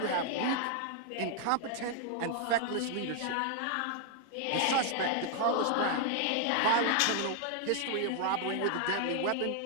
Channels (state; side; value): different; both; correlation 0.00